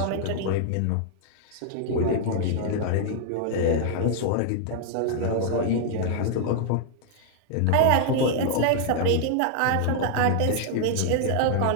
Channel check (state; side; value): different; both; correlation 0.00